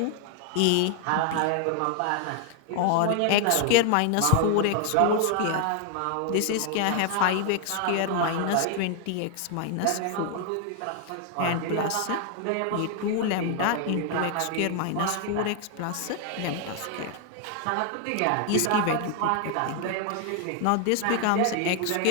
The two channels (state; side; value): different; both; correlation 0.00